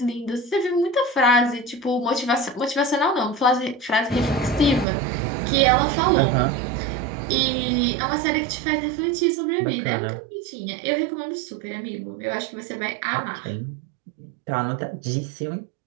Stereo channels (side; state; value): left; drops out; at 4.9 s